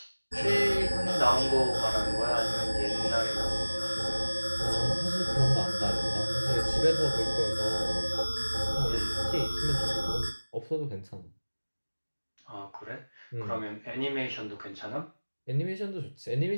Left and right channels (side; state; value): both; inverted; correlation -1.00